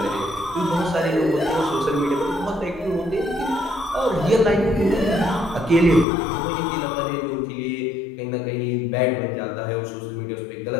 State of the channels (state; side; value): drops out; right; at 6.1 s